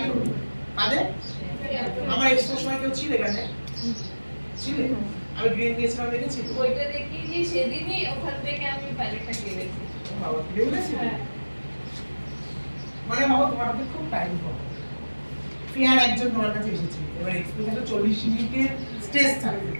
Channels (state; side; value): inverted; both; correlation -1.00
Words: করবে। কাদের আমার এক্সপোর সময় কেউ ছিল এখানে? ছিল? আমি গ্রিন দিয়েছিলাম, দেখেছি ওইটা দেখি যে সেদিনই ওখান থেকে আমি প্যালেটটা কিনেছি। বাবা কিনে বলেছি মানে বাবা তোমার হাতে খুব টাইম পাবো। ফেয়ার একজন তোমার কাছে এসেছে, এবার এক্সপোজে 40 মিনিটের স্টেজ থাকে,